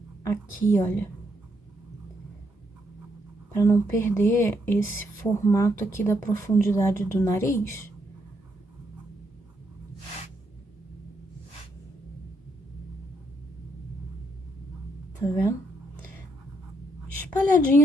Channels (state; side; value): normal; both; correlation 0.76